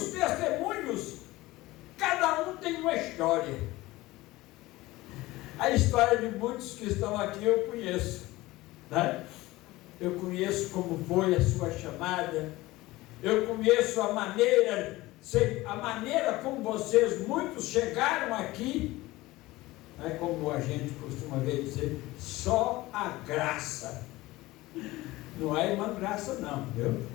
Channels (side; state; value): right; quieter; 19.0 dB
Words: testemunhos, cada um tem uma história. A história de muitos que estão aqui eu conheço, né? Eu conheço como foi a sua chamada, Eu conheço a maneira como vocês, muitos chegaram aqui, é como a gente costuma ver dizer, só a graça. Não é a irmã Graça não, viu?